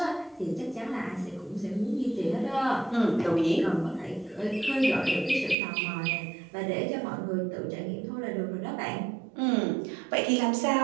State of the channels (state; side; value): drops out; left; at 5.6 s